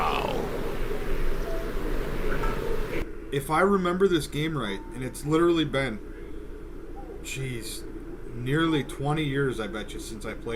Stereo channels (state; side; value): identical; both; correlation 1.00